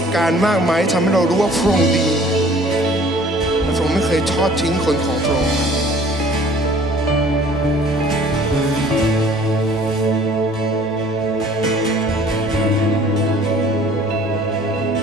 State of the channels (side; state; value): both; normal; correlation 0.53